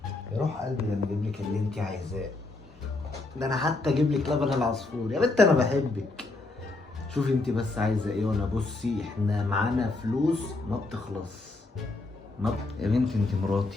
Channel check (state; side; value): quieter; right; 3.2 dB